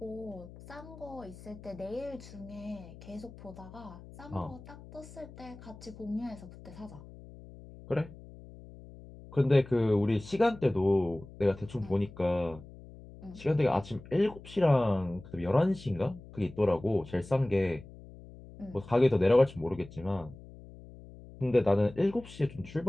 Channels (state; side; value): noise; left; hum, 18 dB below the sound